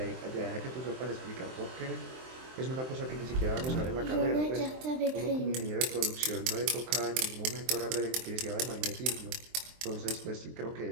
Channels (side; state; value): left; late; 23 ms